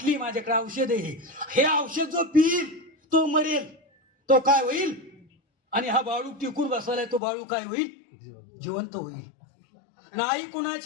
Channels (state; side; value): drops out; right; at 7.2 s